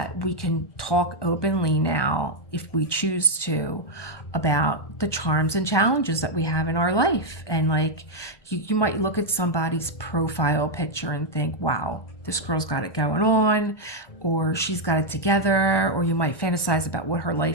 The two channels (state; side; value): late; right; 1.2 ms